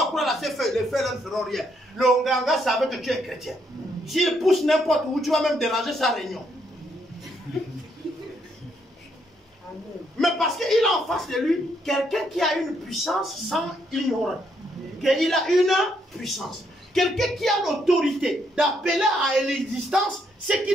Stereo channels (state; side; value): normal; both; correlation 0.74